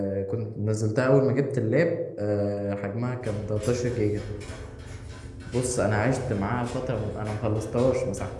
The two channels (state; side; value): identical; both; correlation 1.00